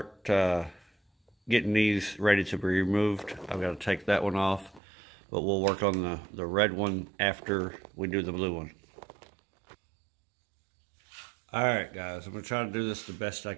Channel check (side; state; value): left; drops out; at 4.8 s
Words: getting these ready to be removed. I've got to take that one off, but we'll work on the red one after we do the blue one. Alright guys, I'm going to try to do this the best I